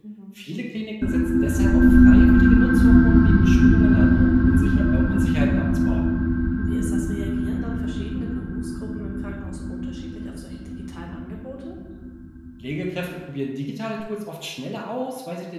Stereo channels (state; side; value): identical; both; correlation 1.00